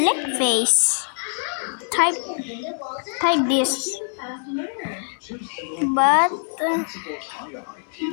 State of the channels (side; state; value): right; silent; digital silence